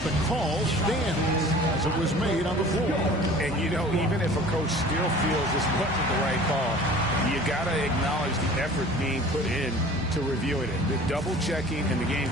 the call stands as it was made on the floor. And, you know, even if a coach still feels this wasn't the right call, you got to acknowledge the effort being put in to reviewing it. The double-checking and the game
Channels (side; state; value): both; normal; correlation 0.45